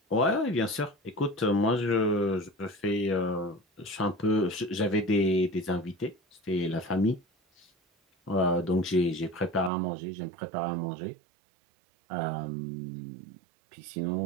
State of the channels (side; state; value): left; drops out; at 9.7 s